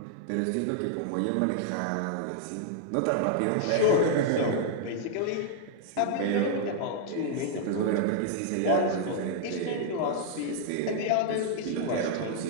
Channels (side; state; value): both; different; correlation -0.01